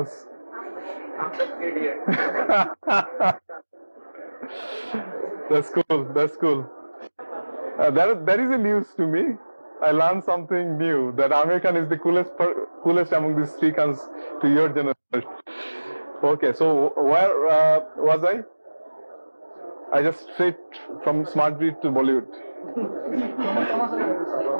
That's cool. That is a news to me. I learned something new, that Amir Khan is the coolest among these three Khans to your generation. Okay, so where was I? I just straight from smart grid to Bollywood.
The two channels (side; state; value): both; inverted; correlation -1.00